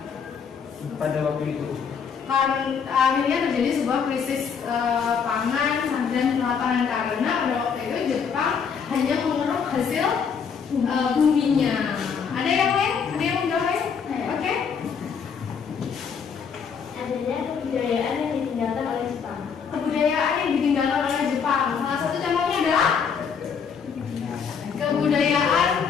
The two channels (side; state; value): right; quieter; 6.5 dB